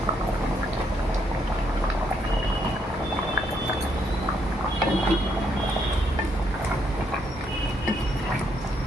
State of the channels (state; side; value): normal; both; correlation 0.74